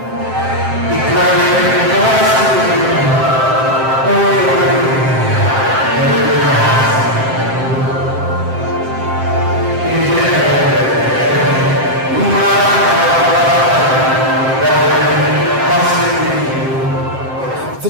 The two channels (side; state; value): left; late; 7.6 ms